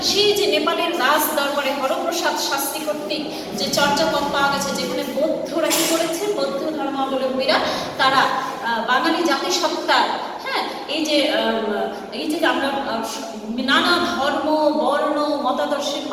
সেই যে নেপালের রাজ দরবারে হরপ্রসাদ শাস্ত্রী কর্তৃক যে চর্যাপদ পাওয়া গেছে, যেখানে বৌদ্ধরা কি করেছে, বৌদ্ধ ধর্মাবলম্বীরা তারা বাঙালি জাতিসত্তার, হ্যাঁ, এই যে আমরা নানা ধর্ম বর্ণ মতাদর্শের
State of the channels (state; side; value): identical; both; correlation 1.00